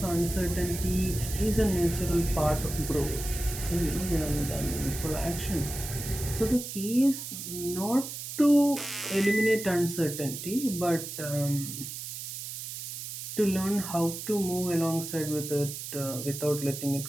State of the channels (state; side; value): noise; right; hiss, 8 dB below the sound